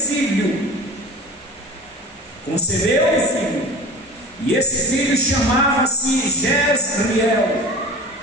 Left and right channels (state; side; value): normal; both; correlation 0.35